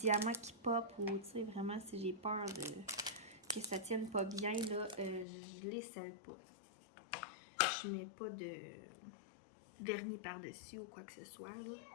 qui pop ou vraiment si j'ai peur que ça tienne pas bien, là, je les scelle pas. Je mets pas de vernis par-dessus ou quoi que ce soit. Là.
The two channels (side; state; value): right; drops out; at 5.2 s